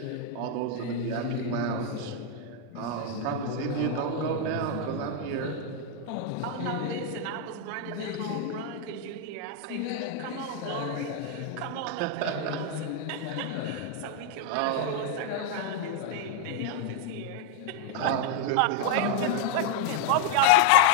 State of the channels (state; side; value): different; both; correlation 0.00